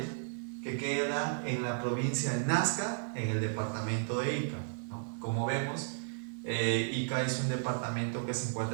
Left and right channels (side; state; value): left; silent; 55 dB below the other